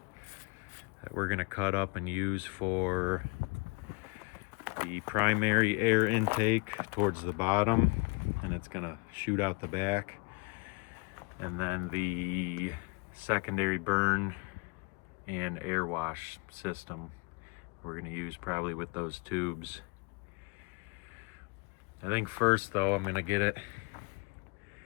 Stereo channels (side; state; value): right; quieter; 31.3 dB